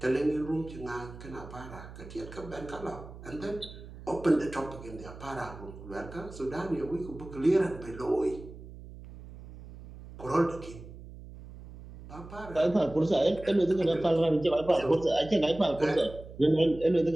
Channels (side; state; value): right; noise; hum, 15 dB below the sound